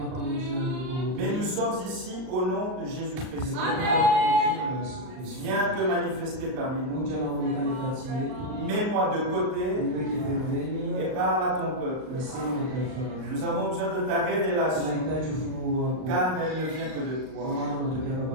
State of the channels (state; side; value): late; left; 38 ms